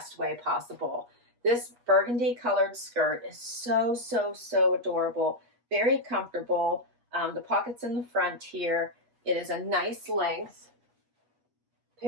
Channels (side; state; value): left; late; 8.3 ms